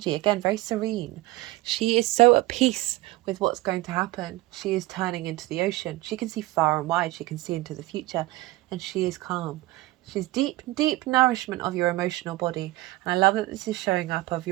Again, very serene. She is so at peace with what's going to happen. She is turning into the ocean. She can see far and wide. She can see into the future, and she is calm. She's deep nourishment of your emotional body. And I love that this is showing up of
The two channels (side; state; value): left; quieter; 19.3 dB